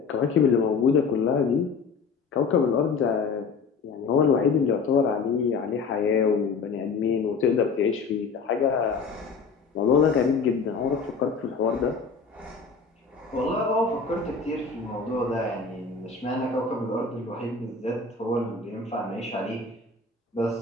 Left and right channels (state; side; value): quieter; right; 5.0 dB